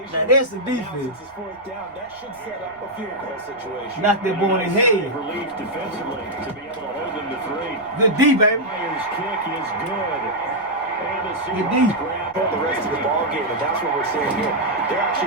Now that's the defense. Since it's 4th down, that should set up a field goal situation. Knock that boy in his head. Relief defensively to be able to hold them to 3. Good D, baby. Myers' kick is good. And the Good D. Seahawks grab The rest of the ball game, and that's what we're seeing here. They're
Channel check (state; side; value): noise; left; rumble, 29 dB below the sound